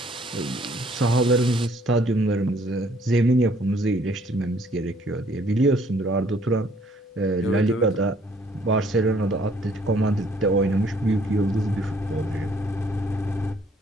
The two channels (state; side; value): normal; both; correlation 0.62